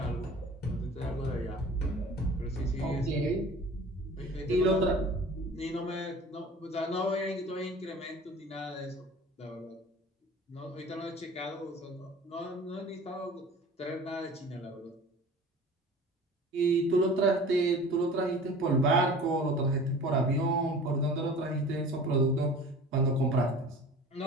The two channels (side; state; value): both; normal; correlation 0.42